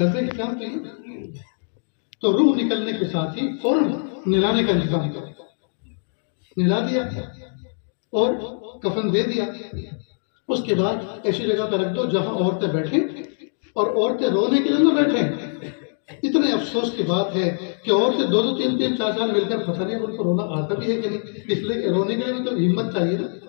کے کام تو یہ تو روح نکلنے کے ساتھ ہی فوراً نلانے کا انتظام کرو۔ نلا دیا اور کفن دے دیا، اس کے بعد ایسی جگہ پہ رکھ دو جہاں عورتیں بیٹھیں، اور عورتیں رونے کے لیے نہ بیٹھیں۔ اتنے افسوس کی بات ہے کہ عورتیں 2-2 3-3 4-4 مل کر پتہ نہیں ان کو رونا آتا بھی ہے کہ نہیں، اس لیے کہ رونے کے لیے بھی تو ہمت چاہیے نا،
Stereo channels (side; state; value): right; silent; digital silence